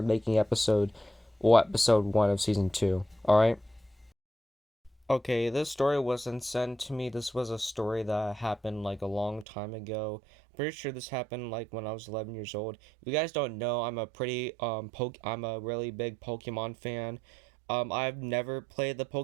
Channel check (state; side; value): drops out; left; at 9.5 s